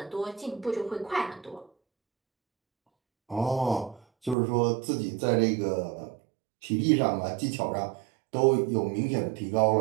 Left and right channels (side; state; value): left; drops out; at 4.4 s